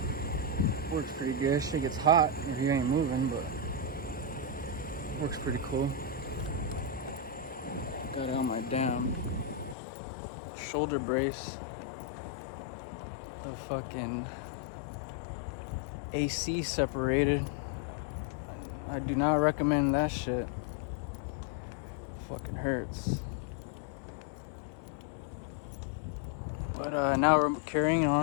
Works pretty good. Shit gets hot if you ain't moving, but works pretty cool. Got out my damn shoulder brace. The fucking AC separated. I do not recommend that shit. Fucking hurts. But now we're carrying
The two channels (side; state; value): right; drops out; at 9.8 s